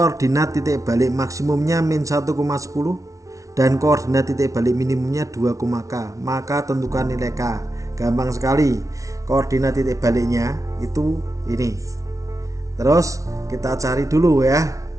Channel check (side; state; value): left; late; 0.16 ms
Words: titik balik maksimumnya min 1,10 dan koordinat titik balik minimumnya 2, K, maka tentukan nilai K. Gampang sekali, koordinat titik baliknya itu ini. Terus kita cari dulu ya,